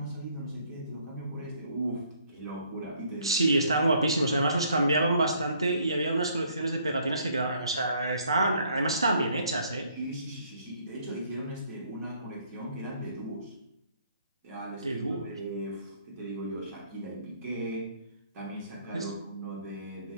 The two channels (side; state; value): both; inverted; correlation -0.64